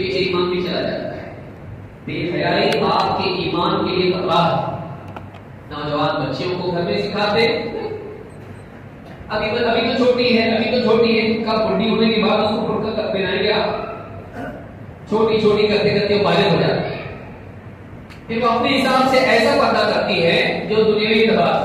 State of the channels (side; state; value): both; identical; correlation 1.00